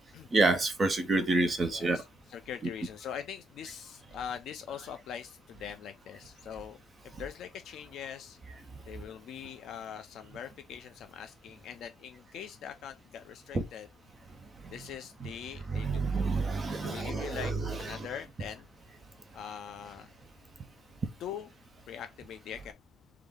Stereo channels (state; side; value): normal; both; correlation 0.76